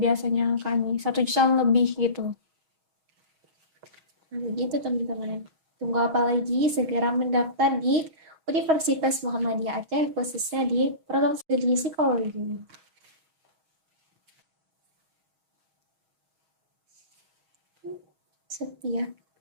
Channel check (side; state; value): left; late; 6.3 ms